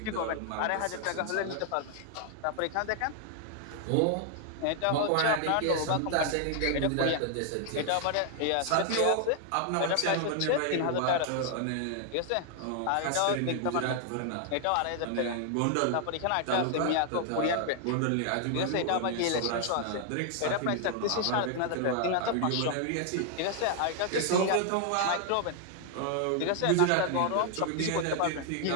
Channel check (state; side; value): different; both; correlation 0.00